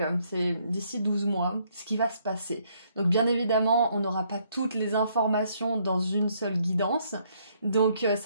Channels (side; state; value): both; inverted; correlation -0.69